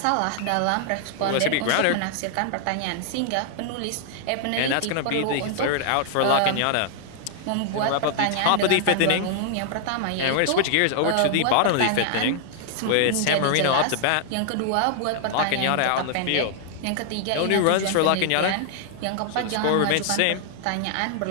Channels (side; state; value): both; different; correlation -0.01